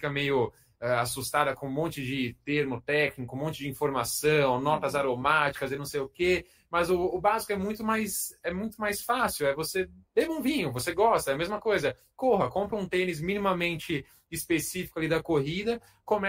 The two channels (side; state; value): both; identical; correlation 1.00